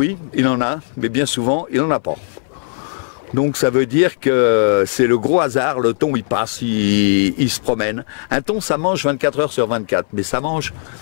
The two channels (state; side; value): silent; right; 61 dB below the other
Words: il en a, mais bien souvent, il n'en a pas. Donc ça veut dire que c'est le gros hasard, le thon il passe, il se promène. Un thon ça mange 24 heures sur 24, mais ça mange